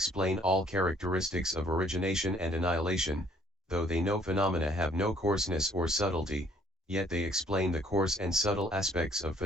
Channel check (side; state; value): both; normal; correlation 0.61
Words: all characteristics of origination and annihilation. Though they know phenomena have no coarseness or subtlety, yet they explain the coarse and subtle aspects of